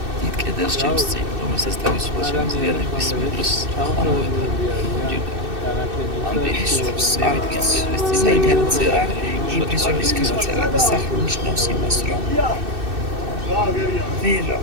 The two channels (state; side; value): late; left; 2.6 ms